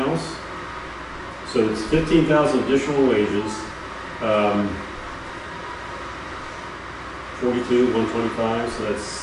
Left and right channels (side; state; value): both; identical; correlation 1.00